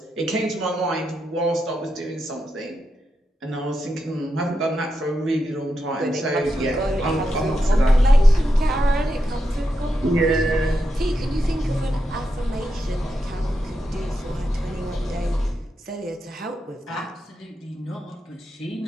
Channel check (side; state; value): both; normal; correlation 0.86